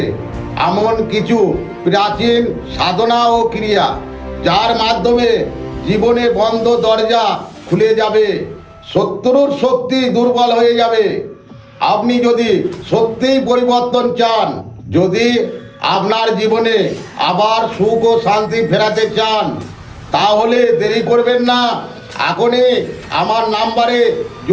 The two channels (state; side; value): identical; both; correlation 1.00